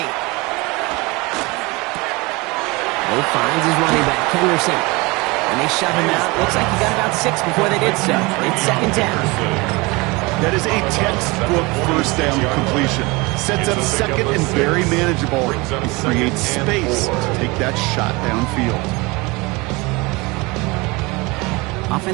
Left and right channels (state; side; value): quieter; left; 24.7 dB